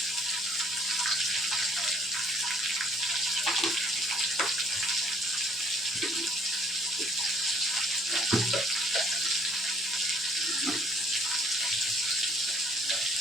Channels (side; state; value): both; normal; correlation 0.61